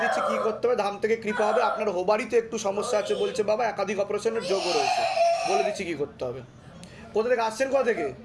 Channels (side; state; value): both; identical; correlation 1.00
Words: দিচ্ছি কি করতে হবে। ধাম থেকে কৃপা হবে। আপনার হোবারিতে একটু সমস্যা আছে বলছে বাবা, একাধিক অপারেশনের যোগও রয়েছে। বলে দিচ্ছি কি করতে হবে। কোথা থেকে আসছেন? কোথা থেকে?